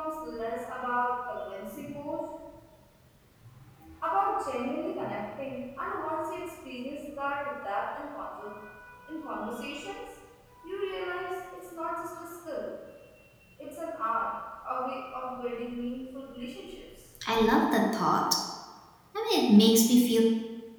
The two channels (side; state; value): both; identical; correlation 1.00